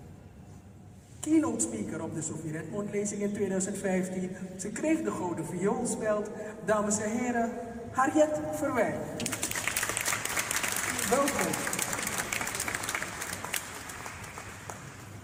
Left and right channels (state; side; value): identical; both; correlation 1.00